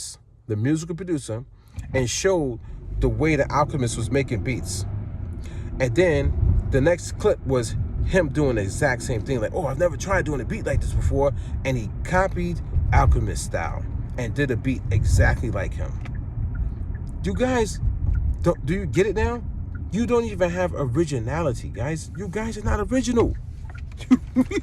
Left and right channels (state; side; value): identical; both; correlation 1.00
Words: the musical producer, and showed the way the Alchemist was making beats. And then the next clip was him doing the exact same thing. Like, oh, I've never tried doing a beat like this before. And he copied Alchemist style and did a beat exactly like him. You guys, do you get it now? You don't even have originality, guys. You guys are not original.